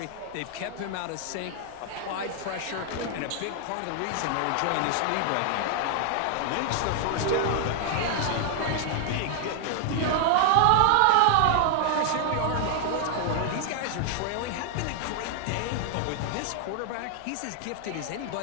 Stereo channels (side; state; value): both; different; correlation -0.01